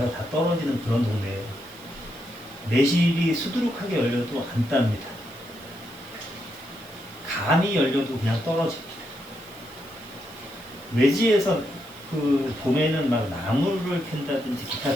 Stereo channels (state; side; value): noise; right; hiss, 22 dB below the sound